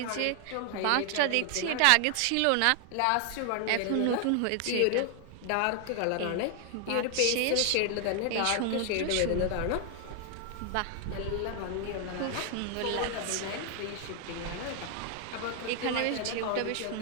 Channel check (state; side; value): different; both; correlation 0.00